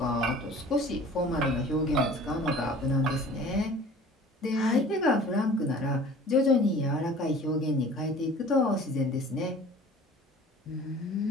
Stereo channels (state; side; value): normal; both; correlation 0.46